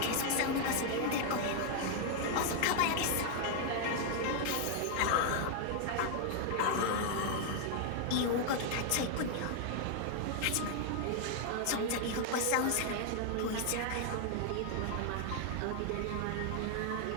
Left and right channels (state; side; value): different; both; correlation 0.00